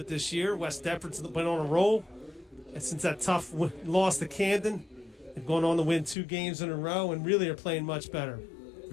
this year. West Deptford's been on a roll. And since that tough loss to Camden, they've gone on to win 2 games in a row and really are playing much better.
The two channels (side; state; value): right; drops out; at 6.2 s